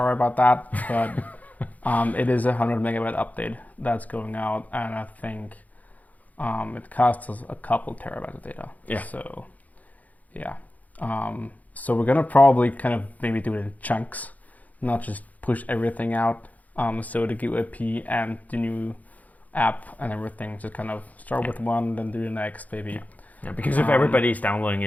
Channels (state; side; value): late; right; 0.076 ms